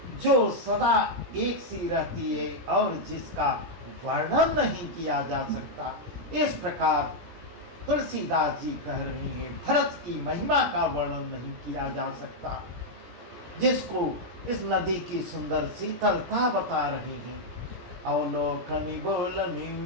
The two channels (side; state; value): left; late; 17 ms